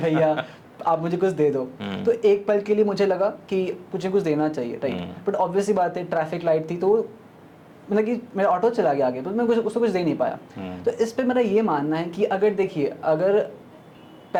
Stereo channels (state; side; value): identical; both; correlation 1.00